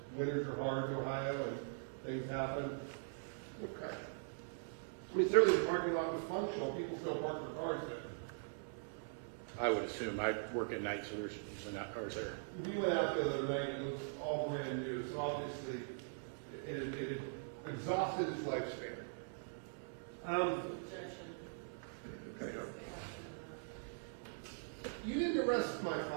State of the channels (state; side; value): silent; left; digital silence